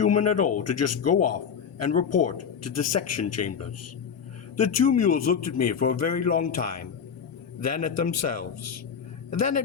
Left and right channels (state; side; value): quieter; right; 7.1 dB